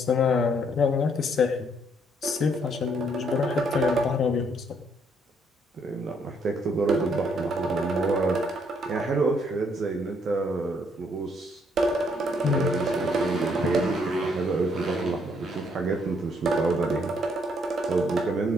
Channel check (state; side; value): normal; both; correlation 0.69